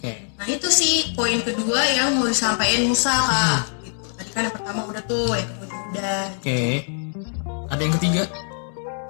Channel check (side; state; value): right; silent; 63 dB below the other